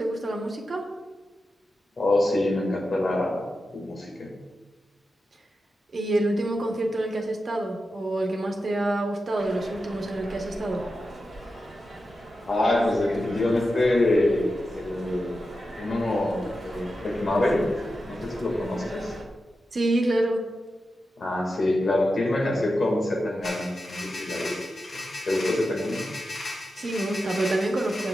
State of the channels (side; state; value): both; normal; correlation 0.90